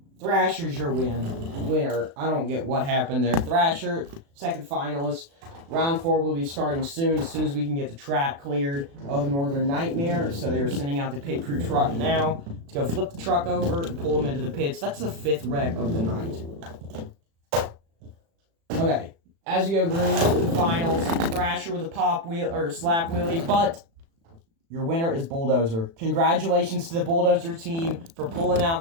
Thrasher's your winner. I don't get what happened there. Thrasher, second finalist. Round 4 will be starting soon as we can get the track cleared of Northern Nightmare. So they are sending out the pit crew truck now to go flip the truck over and pull them into the pits. That's the 5th wreck of the night. Okay, as we go green to the finals, Thrasher with a pop wheel or slap wheelie, but your winner is Bulldozer. Congratulations to the Bulldozer team for pulling out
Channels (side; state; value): left; late; 36 ms